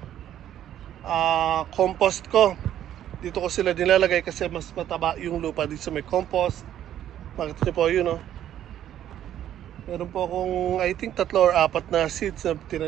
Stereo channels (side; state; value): left; quieter; 11.2 dB